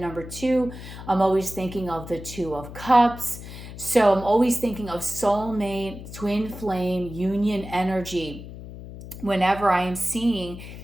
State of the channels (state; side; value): noise; left; hum, 12 dB below the sound